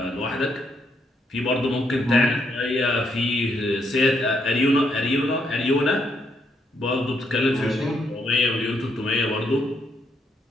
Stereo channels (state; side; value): normal; both; correlation 0.75